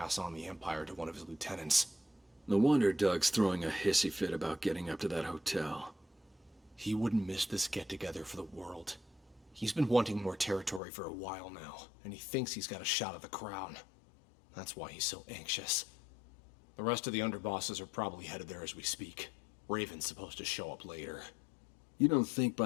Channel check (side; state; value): right; drops out; at 10.8 s